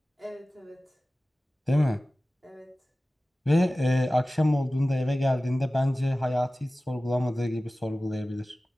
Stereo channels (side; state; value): both; normal; correlation 0.96